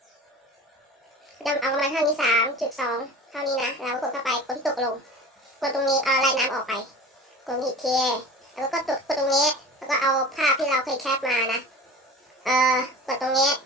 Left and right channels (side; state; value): both; normal; correlation 0.36